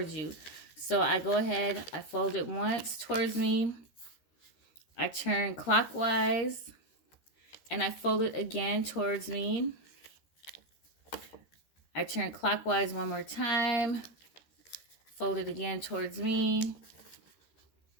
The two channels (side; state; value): right; late; 13 ms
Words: you. So I go ahead, I fold it once towards me. I turn clockwise and I fold it again towards me. I turn clockwise one more time, fold it again towards me,